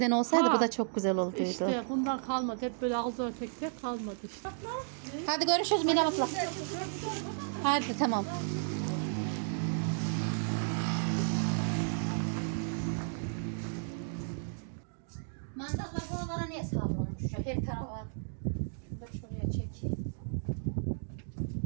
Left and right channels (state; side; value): silent; left; digital silence